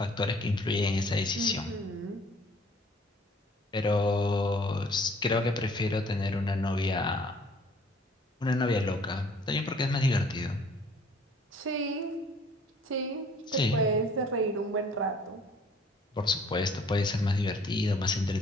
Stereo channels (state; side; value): normal; both; correlation 0.56